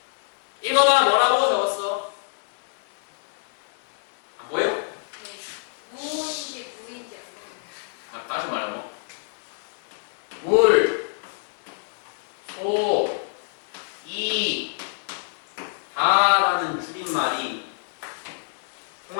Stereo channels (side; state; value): right; silent; digital silence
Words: 읽어봐. 뭐라고 적었어? 안 보여? 네. 무인지 무인지 안 보여요. 다시 말하고 물, 소, 이, 다라는 줄임말이